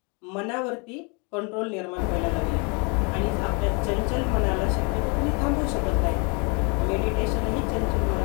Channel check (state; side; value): quieter; right; 33.3 dB